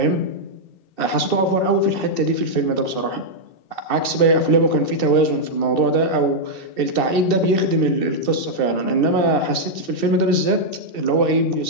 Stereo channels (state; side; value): late; right; 2.7 ms